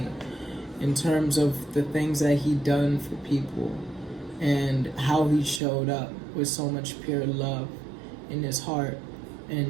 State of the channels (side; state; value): left; drops out; at 5.6 s